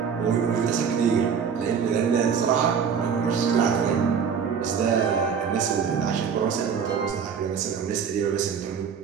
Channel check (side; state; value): left; quieter; 6.8 dB